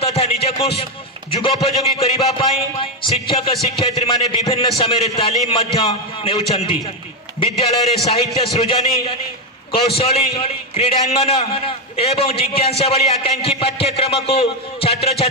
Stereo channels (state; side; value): normal; both; correlation 0.06